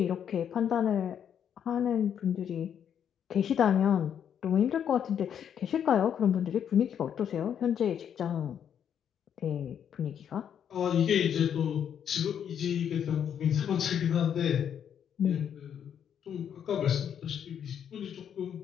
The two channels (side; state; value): right; quieter; 8.7 dB